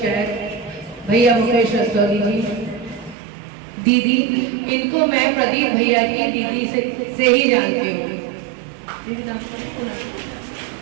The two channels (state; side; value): drops out; left; at 3.2 s